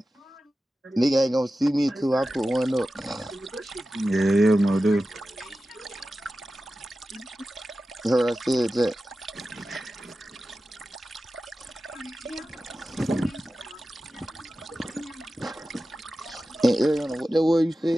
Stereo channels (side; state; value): both; normal; correlation 0.94